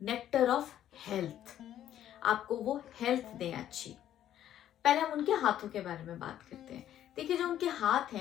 नेक्टर ऑफ हेल्थ। आपको वो हेल्थ दें अच्छी। पहले हम उनके हाथों के बारे में बात करते हैं। देखिए, जो उनके हाथ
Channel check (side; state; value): right; quieter; 11.4 dB